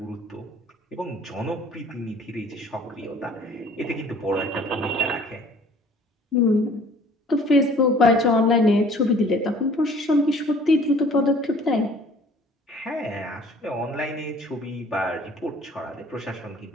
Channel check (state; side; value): normal; both; correlation 0.52